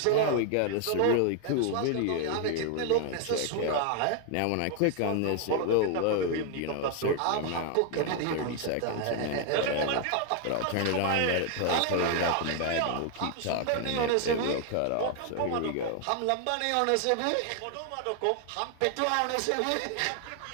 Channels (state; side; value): different; both; correlation 0.00